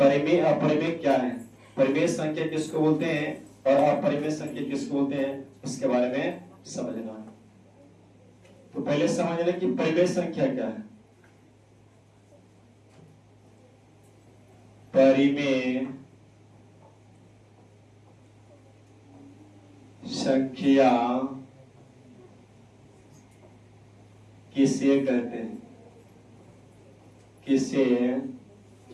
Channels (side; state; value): both; identical; correlation 1.00